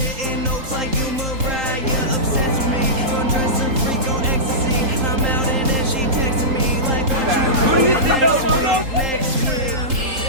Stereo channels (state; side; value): late; left; 3.8 ms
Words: notes like you Mariah. Obsessed with me, undressing freak on ecstasy. I'm out and then she texting me like, what you doing next week?